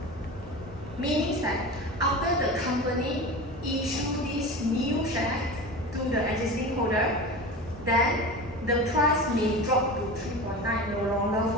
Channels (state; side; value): normal; both; correlation 0.30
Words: Meaning that after the company issue this new share to the existing holder, then the price may drop to 3.9, no longer